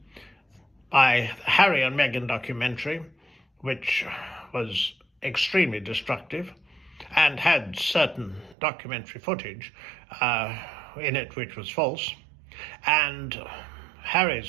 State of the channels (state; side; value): drops out; left; at 8.6 s